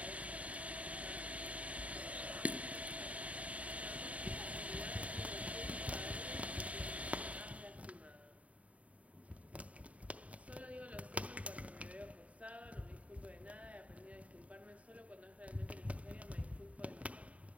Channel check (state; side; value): late; left; 0.067 ms